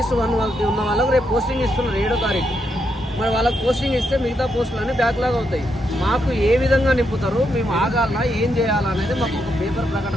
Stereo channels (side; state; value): both; normal; correlation 0.80